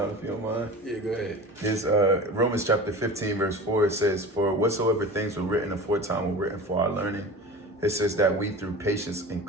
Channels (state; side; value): normal; both; correlation 0.35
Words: if you don't mind. Yeah, go ahead. It's Romans chapter 15, verse 4. It says, "For whatsoever things were written aforetime were written for our learning." It says that we through patience and